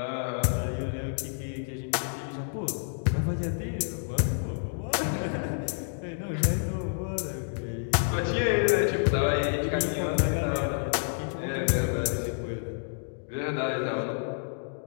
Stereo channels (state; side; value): silent; right; digital silence